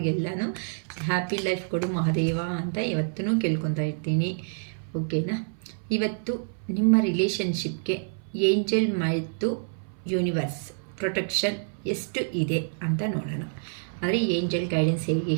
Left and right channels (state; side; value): silent; left; 60 dB below the other